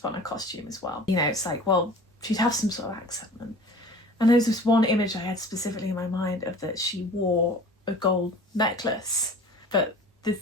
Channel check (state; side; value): normal; both; correlation 0.43